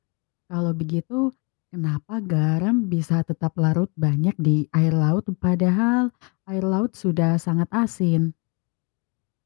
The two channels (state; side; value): quieter; right; 32.1 dB